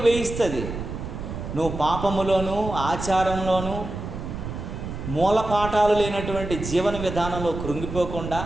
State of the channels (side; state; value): right; noise; rumble, 7 dB below the sound